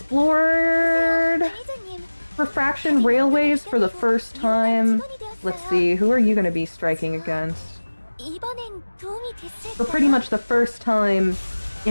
관리자님, refraction railways for the first time. Let's see, who are you going to be striking against? 이번엔 도움이 됐을까요? For pretty much the first time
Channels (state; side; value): inverted; both; correlation -1.00